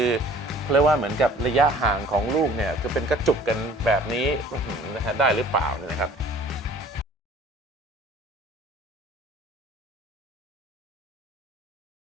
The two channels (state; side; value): normal; both; correlation 0.50